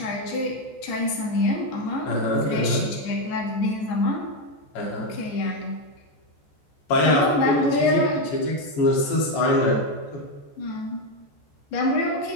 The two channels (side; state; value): right; late; 14 ms